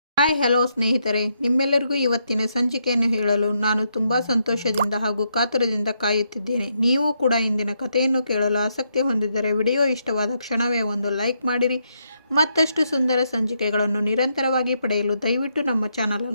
Hi hello ಸ್ನೇಹಿತರೆ, ನಿಮ್ಮೆಲ್ಲರಿಗೂ ಇವತ್ತಿನ ಸಂಚಿಕೆಯನ್ನು ಹೇಳಲು ನಾನು ತುಂಬ ಸಂತೋಷದಿಂದ ಹಾಗೂ ಕಾತುರದಿಂದ ಕಾಯುತ್ತಿದ್ದೇನೆ. ನೀವು ಕೂಡ ಇಂದಿನ ಕಥೆಯನ್ನು ಕೇಳಲು ಆಸಕ್ತಿ ಹೊಂದಿದ್ದರೆ ವಿಡಿಯೋ ಇಷ್ಟವಾದ ಕ್ಷಣವೇ ಒಂದು ಲೈಕ್ ಮಾಡಿರಿ. ಮತ್ತಷ್ಟು ಸುಂದರ ಸಂಚಿಕೆಗಳನ್ನು ನಿರಂತರವಾಗಿ ಪಡೆಯಲು ದಯವಿಟ್ಟು ನಮ್ಮ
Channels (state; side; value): inverted; both; correlation -0.79